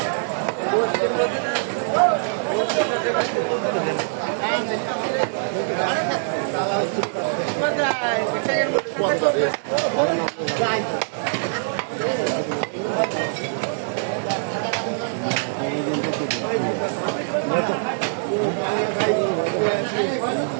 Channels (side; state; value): left; silent; digital silence